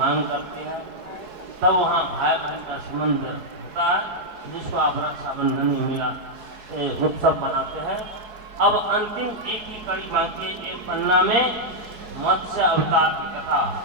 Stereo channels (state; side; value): late; left; 4.7 ms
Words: करती है। तब वहाँ भाई बहन का संबंध होता है जिसको आप रक्षाबंधन में मिला उत्सव मनाते हैं। अब अंतिम एक ही कड़ी बाकी एक पन्ना में मत्स्य अवतार की कथा।